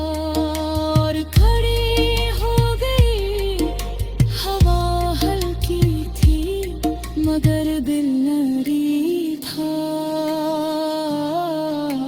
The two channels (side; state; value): both; identical; correlation 1.00